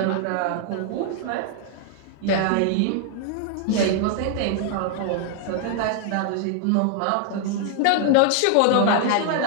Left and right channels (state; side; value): different; both; correlation 0.00